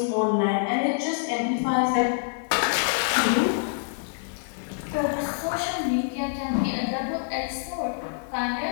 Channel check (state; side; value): silent; right; digital silence